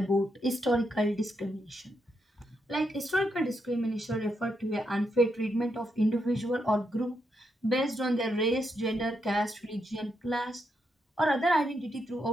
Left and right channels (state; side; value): normal; both; correlation 0.81